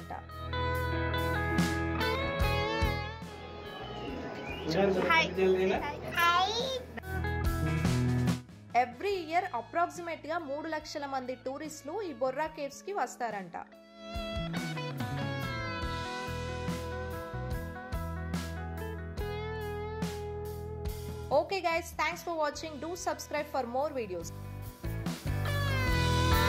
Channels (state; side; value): identical; both; correlation 1.00